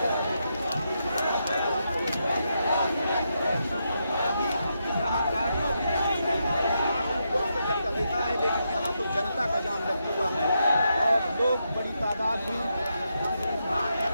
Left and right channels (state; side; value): inverted; both; correlation -0.83